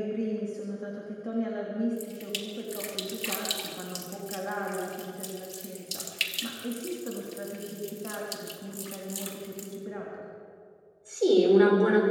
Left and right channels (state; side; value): identical; both; correlation 1.00